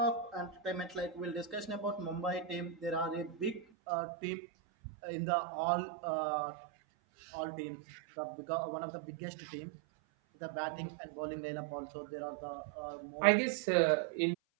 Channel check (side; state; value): left; drops out; at 3.7 s